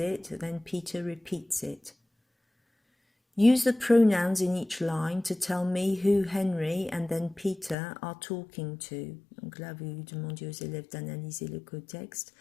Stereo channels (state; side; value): drops out; right; at 7.8 s